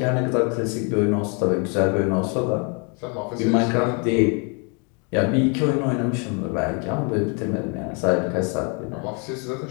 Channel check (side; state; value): right; quieter; 35.2 dB